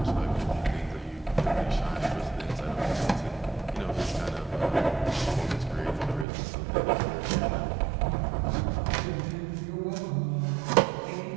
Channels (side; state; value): left; drops out; at 6.2 s